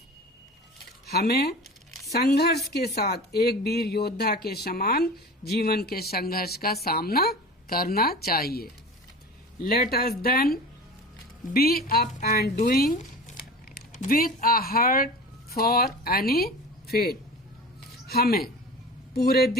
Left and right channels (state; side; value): normal; both; correlation 0.35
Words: हमें संघर्ष के साथ एक वीर योद्धा के समान जीवन के संघर्ष का सामना करना चाहिए। Let us then be up and doing with a heart for any fate. हमें पूरे